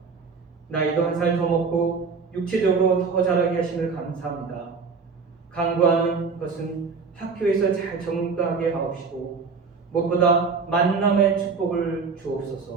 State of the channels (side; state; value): left; quieter; 5.0 dB